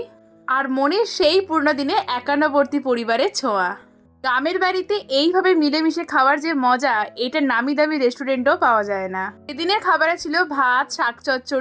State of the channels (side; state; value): both; identical; correlation 1.00